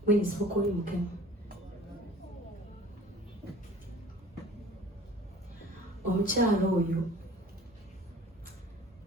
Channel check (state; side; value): normal; both; correlation 0.46